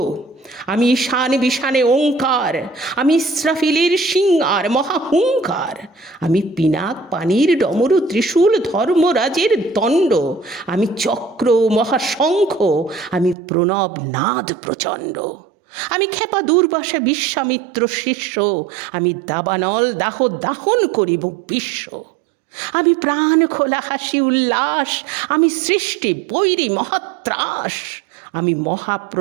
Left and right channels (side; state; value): left; drops out; at 13.4 s